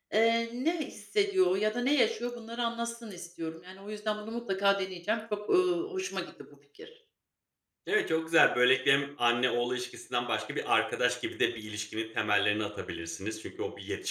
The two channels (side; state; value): both; identical; correlation 1.00